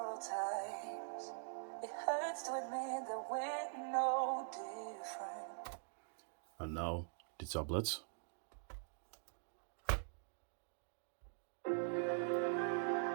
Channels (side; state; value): left; silent; digital silence